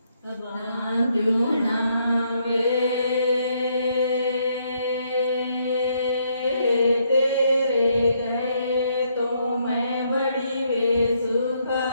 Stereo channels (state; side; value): inverted; both; correlation -0.73